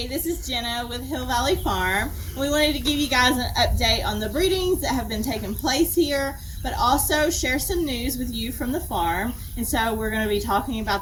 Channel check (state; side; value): identical; both; correlation 1.00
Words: Hey, this is Jenna with Hill Valley Farm. We wanted to give you guys an update on the breedings that have been taking place here, but also share some news with you from the farm. And so we're going to be talking